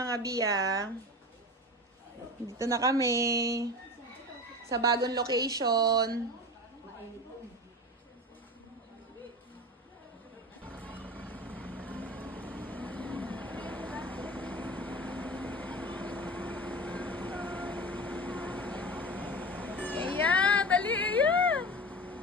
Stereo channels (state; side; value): normal; both; correlation 0.30